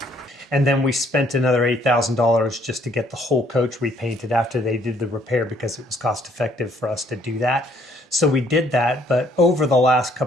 And then we spent another $8,000 just to get the whole coach repainted after they did the repair, because it was cost effective for us to do that. So we did that, but over the last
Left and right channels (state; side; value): normal; both; correlation 0.64